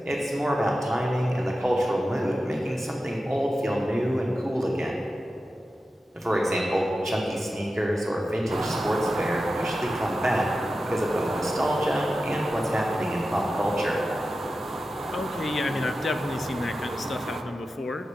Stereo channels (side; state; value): both; normal; correlation 0.92